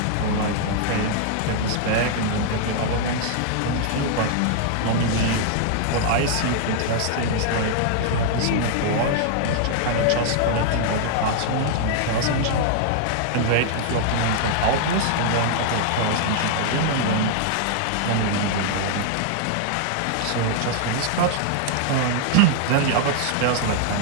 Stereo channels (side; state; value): both; different; correlation -0.01